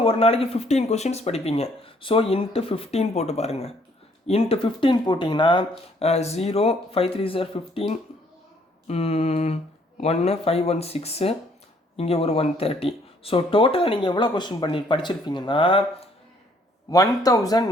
ஒரு நாளைக்கு 15 கொஸ்டின்ஸ் படிப்பீங்க. ஸோ இன்ட்டு 15 போட்டு பாருங்கள். இன்ட்டு 15 போட்டிங்கன்னா 0, 5 3 சார் 15, 1 5 1 6, இங்கே ஒரு 130. ஸோ டோட்டலாக நீங்கள் எவ்வளோ கொஸ்டின் படிச்சிருப்பீங்கன்னா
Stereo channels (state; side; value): normal; both; correlation 0.64